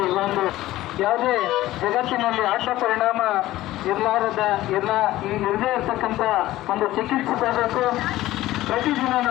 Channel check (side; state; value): right; quieter; 15.9 dB